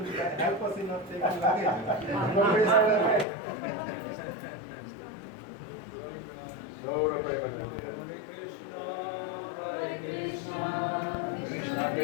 help us in not taking luggage. Hare Krishna, Krishna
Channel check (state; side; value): drops out; right; at 3.2 s